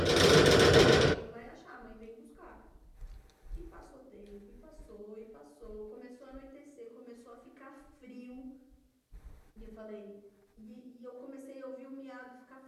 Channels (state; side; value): identical; both; correlation 1.00